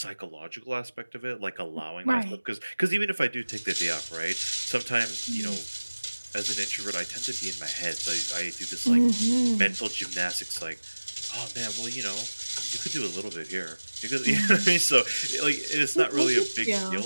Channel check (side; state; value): both; inverted; correlation -1.00